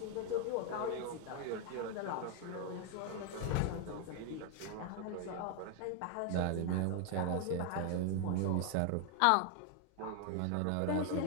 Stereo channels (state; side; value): different; both; correlation 0.00